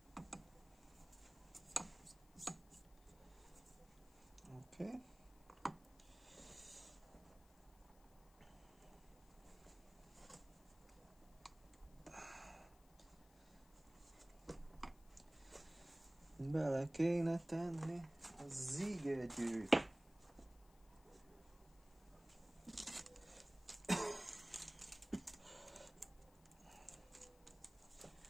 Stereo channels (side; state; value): left; noise; hiss, 27 dB below the sound